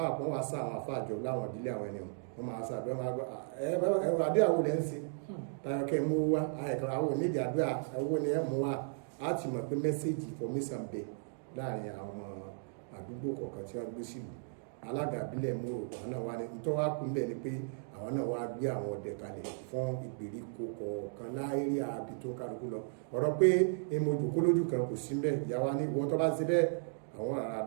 kan wá sá àwọn àfáà jọ láwọn ìbílẹ̀ àwọn ẹni wọn máa sá àdúrà máa gbọ́ ẹ̀rọ àdúrà wo lẹ́ ń ṣe tayọ kẹ́ mú wá àwọn onídìí àdúrà owó ni ẹ̀ mú wá á ti mọ̀ pé mẹ́sẹ̀gì information bẹ̀ láàrin àwọn ọmọ àdúgbò kọ̀ọ̀kan tí wọ́n gbé sílùú. Alága ìbílẹ̀ Mòrò àwọn náà wá ní nítorí wá kún bẹ́ẹ̀ ni pé àwọn náà wá gbé àwọn ọdẹ kalẹ̀ fún ìgbèríko kọ̀ọ̀kan láérí àbí tó ń kálukú lọ. Ọ̀rọ̀ pé èmo jòkó lójú kan kò sí bẹ́ẹ̀, ìyá wa ní ìwọ tó bá ṣe bẹ́ẹ̀ àwọn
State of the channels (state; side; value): silent; left; digital silence